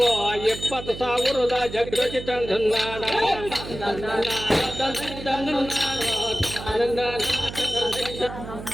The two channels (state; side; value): noise; right; hum, 11 dB below the sound